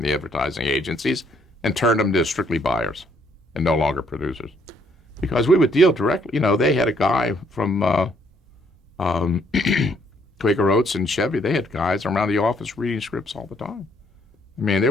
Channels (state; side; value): normal; both; correlation 0.68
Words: the advertising agencies and turned them to strictly buyers and no longer producers. Because we would deal directly. They had a guy from Quaker Oats and Chevy. They had guys around the office reading scripts all the time. I mean, they